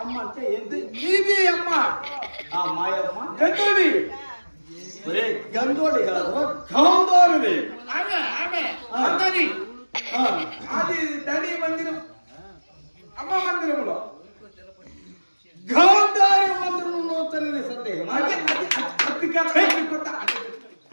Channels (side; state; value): both; inverted; correlation -1.00